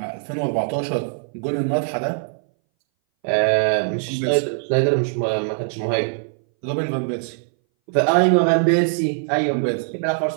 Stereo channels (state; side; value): silent; left; 61 dB below the other